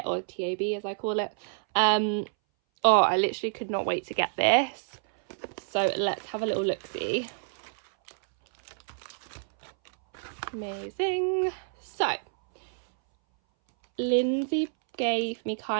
or TAB as I call it. Oh, I literally could not wait to get this. So let's have a little look-see. Amazing. So Lindsay gave me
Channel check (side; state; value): left; silent; 59 dB below the other